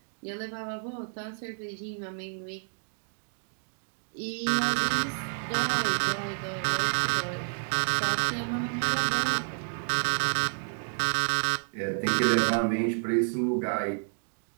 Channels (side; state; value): left; silent; digital silence